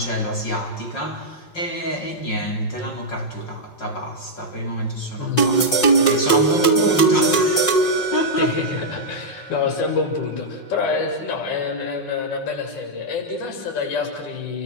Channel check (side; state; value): right; late; 5.6 ms